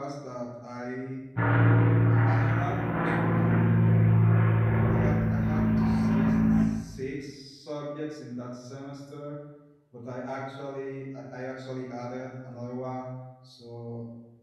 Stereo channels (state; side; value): identical; both; correlation 1.00